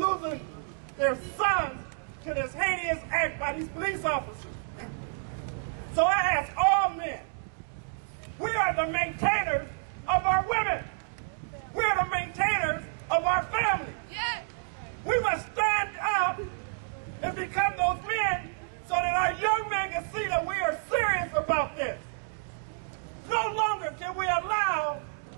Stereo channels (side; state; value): left; silent; digital silence